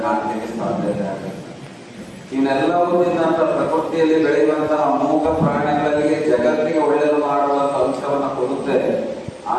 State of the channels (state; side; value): identical; both; correlation 1.00